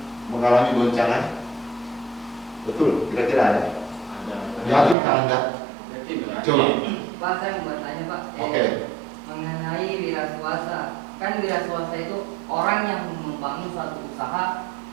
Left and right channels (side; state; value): left; drops out; at 5.0 s